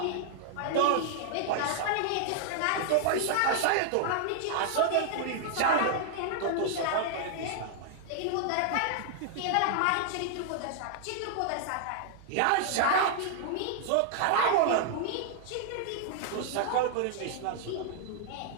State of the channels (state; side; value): different; both; correlation 0.00